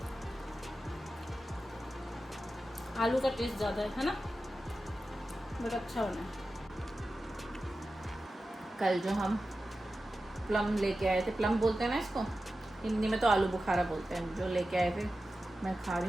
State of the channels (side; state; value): both; normal; correlation 0.93